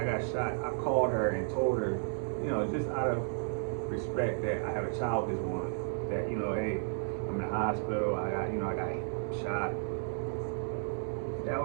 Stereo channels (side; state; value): left; silent; 56 dB below the other